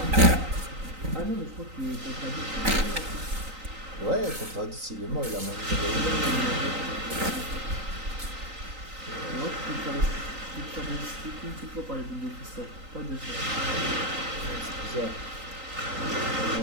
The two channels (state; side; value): late; left; 3.9 ms